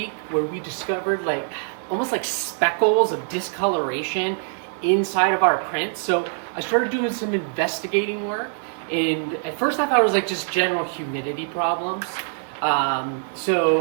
where we discovered almost like speckles of discoloration inside of our print. So I started doing some investigating work, and at first I thought it was just general humidity problems. So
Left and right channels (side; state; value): left; silent; digital silence